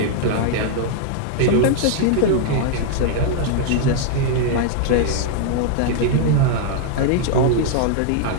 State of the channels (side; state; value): both; different; correlation 0.00